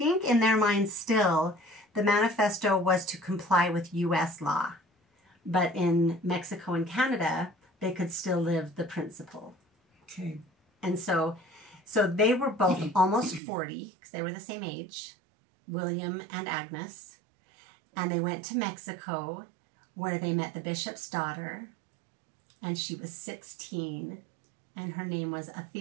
in their minds still, the manifesto was to comply with U.S. law, but in Mexico and Canada, they could still live the principle. Okay, and so they were both almost 40 because they were the same age, William and Agnes. And they went to Mexico where they met the bishop's daughter, and she was 16, and her name was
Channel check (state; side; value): drops out; left; at 13.4 s